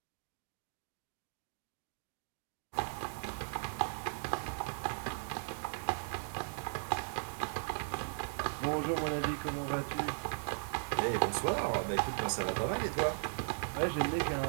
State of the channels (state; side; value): silent; left; digital silence